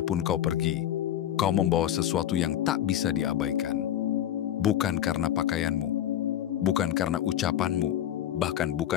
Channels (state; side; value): quieter; right; 11.2 dB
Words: kau pergi, kau membawa sesuatu yang tak bisa diabaikan. Bukan karena pakaianmu, bukan karena ucapanmu, bahkan